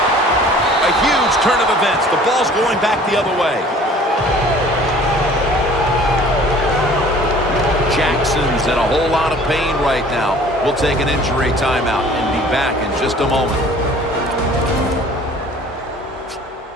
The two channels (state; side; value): normal; both; correlation 0.50